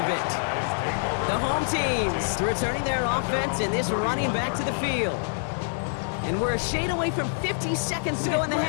it. The home teams returning their offense and this running back to the field. And we're a shade away from 50 seconds to go in the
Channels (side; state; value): right; silent; 58 dB below the other